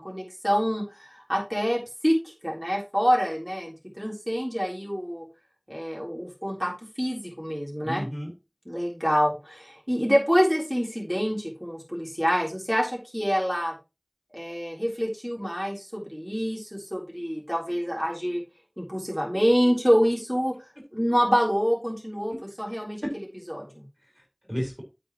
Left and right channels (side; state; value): both; identical; correlation 1.00